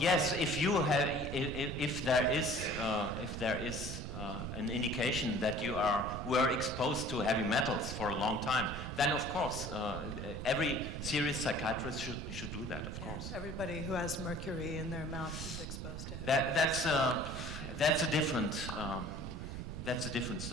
If you have, if there is an indication that you were exposed to heavy metals for a long time, then of course every serious psychiatrist should do that. Of course. Everybody who has mercury in their mouth is exposed to heavy metals. That's a different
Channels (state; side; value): noise; right; rumble, 7 dB below the sound